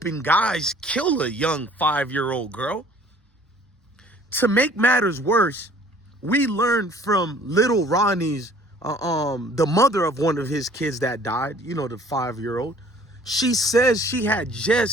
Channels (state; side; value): normal; both; correlation 0.54